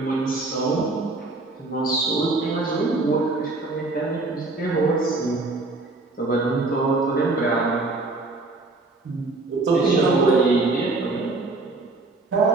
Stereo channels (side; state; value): left; quieter; 3.3 dB